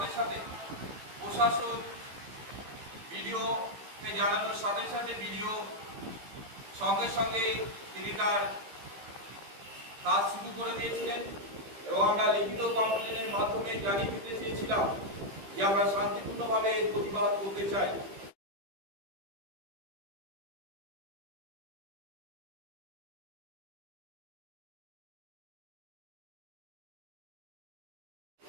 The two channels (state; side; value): late; left; 15 ms